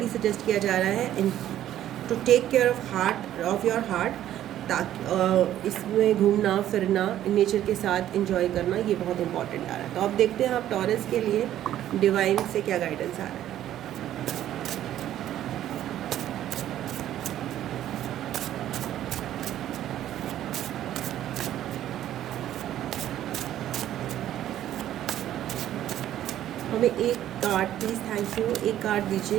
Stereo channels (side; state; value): left; quieter; 12.1 dB